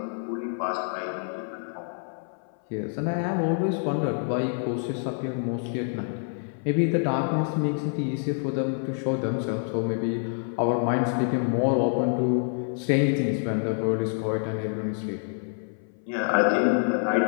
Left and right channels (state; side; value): silent; right; 60 dB below the other